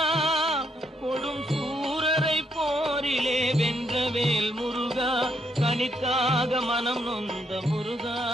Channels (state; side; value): normal; both; correlation 0.75